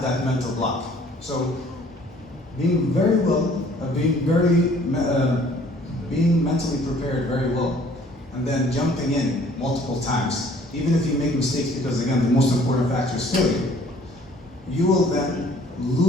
that mental block. So being being mentally prepared very well, and then jumping in multiple times, even if you make mistakes, because again, the most important factor is failure, you will then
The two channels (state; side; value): normal; both; correlation 0.56